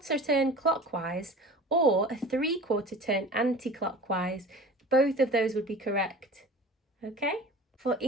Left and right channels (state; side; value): normal; both; correlation 0.40